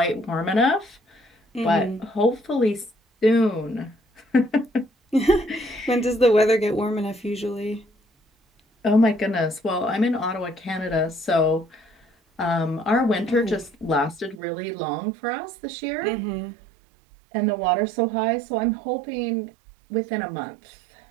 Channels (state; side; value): drops out; left; at 14.4 s